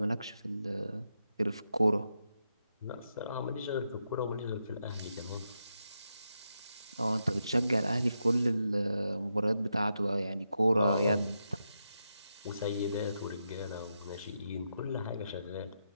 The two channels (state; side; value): inverted; both; correlation -0.85